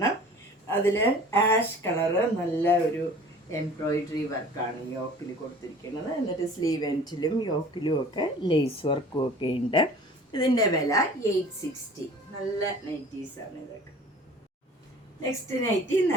അതിൽ ആഷ് കളറ് നല്ല ഒരു എംബ്രോയിഡറി വർക്കാണ് യോക്കിൽ കൊടുത്തിരിക്കുന്നത്. എന്നിട്ട് സ്ലീവ് എൻഡിലും യോക്കിലും ഒക്കെ ലേസ് വർക്കും ഒക്കെ ഉണ്ട്. ഇതിൻ്റെ വില 860. നല്ല നൈറ്റീസാണ് ഇതൊക്കെ. നെക്സ്റ്റ് നൈറ്റി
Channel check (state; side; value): normal; both; correlation 0.46